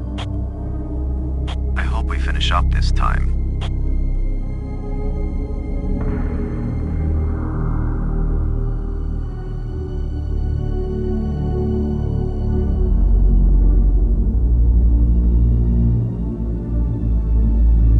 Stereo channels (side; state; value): both; identical; correlation 1.00